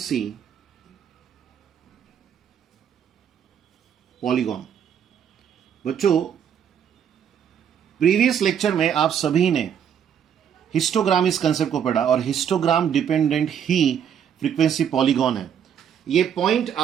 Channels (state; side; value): quieter; left; 8.5 dB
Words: पॉलीगॉन। बच्चों, प्रीवियस लेक्चर में आप सभी ने हिस्टोग्राम इस कंसेप्ट को पढ़ा और हिस्टोग्राम डिपेंडेंट ही फ्रीक्वेंसी पॉलीगॉन है। ये पॉइंट